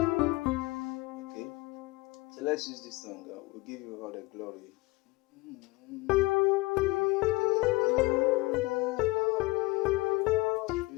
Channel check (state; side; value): quieter; right; 22.3 dB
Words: so let's use this song. We'll give you all the glory.